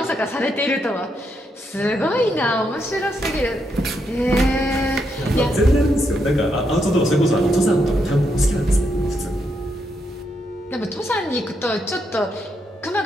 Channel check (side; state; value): both; normal; correlation 0.79